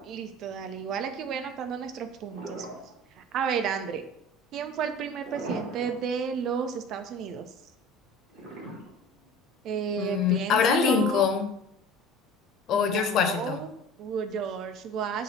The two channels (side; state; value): both; normal; correlation 0.40